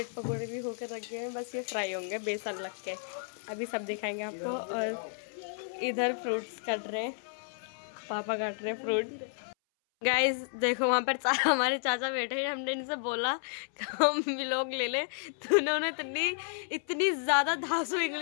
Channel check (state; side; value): silent; right; 56 dB below the other